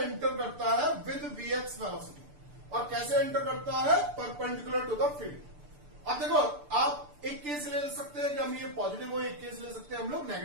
करता है विद Vx वेलोसिटी, और कैसे एंटर करता है, परपेंडिकुलर टू द फील्ड। अब देखो आप एक केस ले सकते हैं कि हम ये पॉजिटिव हो, एक केस ले सकते हैं हम लोग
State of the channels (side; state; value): left; late; 6.8 ms